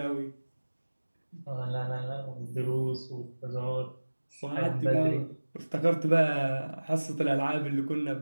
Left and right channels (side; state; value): both; inverted; correlation -1.00